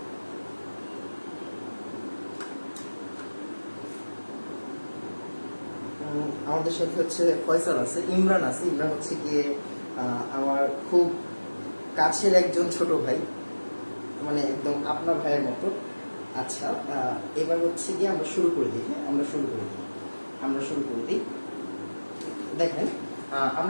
আমাদের সাথে ফয়সাল আছে, ইমরান আছে। ইমরান গিয়ে আমার খুব কাছের একজন ছোট ভাই, মানে একদম আপনার ভাইয়ের মতো। আচ্ছা, এবার গিয়ে আমরা শুরু করে দিই। হ্যাঁ, আমরা শুরু করে দিই। দেখেন,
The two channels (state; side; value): inverted; both; correlation -1.00